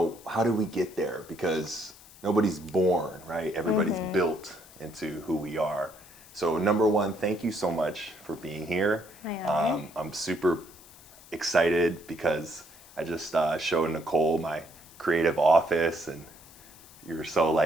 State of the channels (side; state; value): left; noise; hiss, 22 dB below the sound